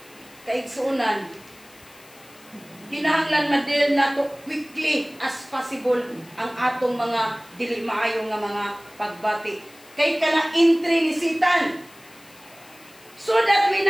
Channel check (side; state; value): left; noise; hiss, 24 dB below the sound